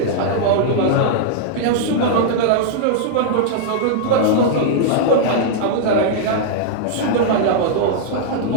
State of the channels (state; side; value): different; both; correlation -0.01